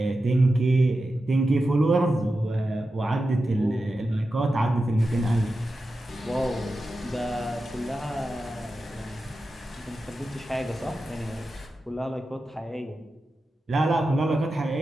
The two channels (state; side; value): normal; both; correlation 0.91